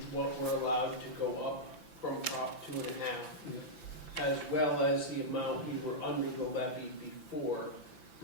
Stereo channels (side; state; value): right; late; 5.9 ms